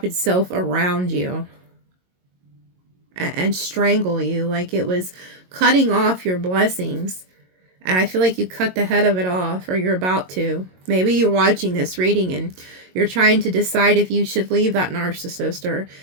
itself around you and strangle you. Like, it was cutting off your blessings. And I feel like you cut the head of it off, or you're about to. Maybe you're watching this reading and you're trying to decide if you should leave that narcissist or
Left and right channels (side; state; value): left; late; 22 ms